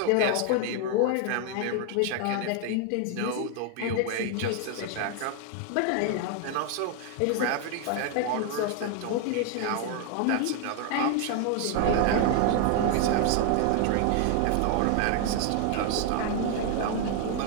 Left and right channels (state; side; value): different; both; correlation 0.00